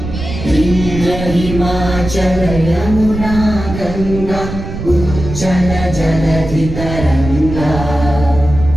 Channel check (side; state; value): right; noise; rumble, 8 dB below the sound